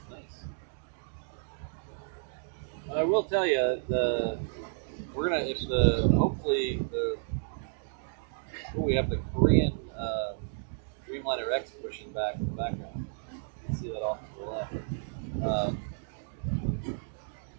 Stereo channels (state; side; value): silent; left; digital silence